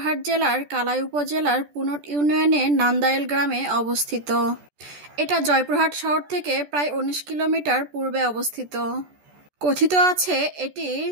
জেলার কালাই উপজেলার পুনট ইউনিয়নের নান্দাইল গ্রামে অবস্থিত। এটা জয়পুরহাট শহর থেকে প্রায় ১৯ কিলোমিটার পূর্বে অবস্থিত। কথিত আছে এটি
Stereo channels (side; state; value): left; late; 14 ms